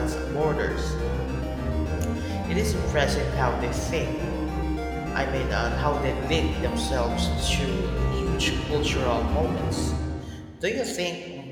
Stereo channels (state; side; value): identical; both; correlation 1.00